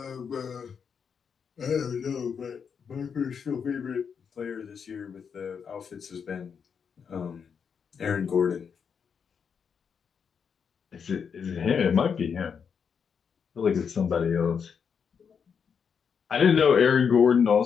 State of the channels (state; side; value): quieter; right; 6.7 dB